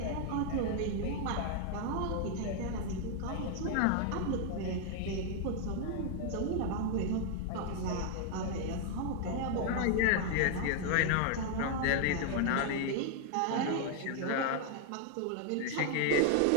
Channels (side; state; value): both; different; correlation 0.00